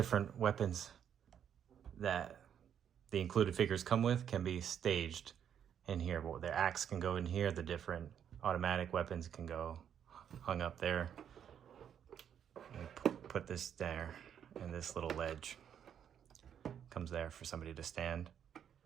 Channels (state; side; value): quieter; left; 8.8 dB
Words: weapons that the included figures come with can be staged in here. Well, their axe can go in here, the different automatic weapons can go hung up there. Put this there, and this little ledge comes there for somebody to stand.